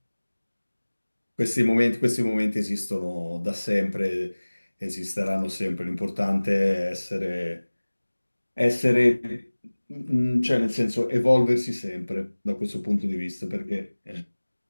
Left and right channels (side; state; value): both; inverted; correlation -1.00